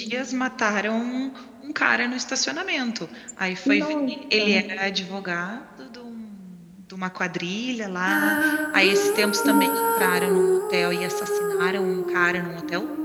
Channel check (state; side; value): identical; both; correlation 1.00